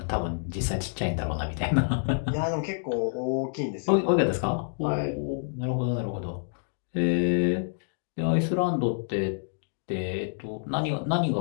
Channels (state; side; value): silent; right; digital silence